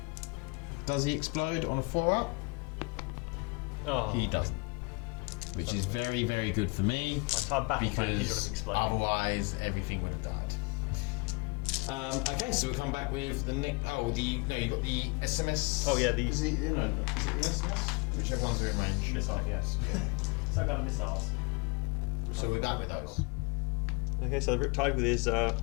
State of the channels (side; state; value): right; quieter; 29.5 dB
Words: Does he explode on a 4-up? Oh, He doesn't. Which is very, very good for me. My entire battle plan is Because going to explode. otherwise everything would have died. Okay, so we'll come back with the next. Oh, you've got the SMS. Oh, yeah, Is it the SMS? Whichever ones are in range. Missiles, yes. Some kind of missiles. So we're back with those. Okay, so the Riptide with his